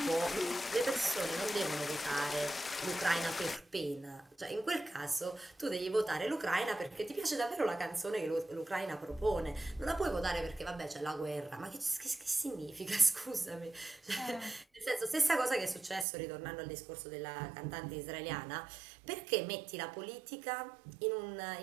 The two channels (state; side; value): drops out; left; at 16.1 s